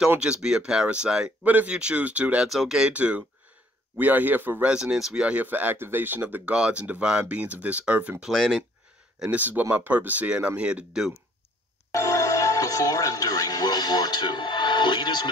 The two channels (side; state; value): both; normal; correlation 0.60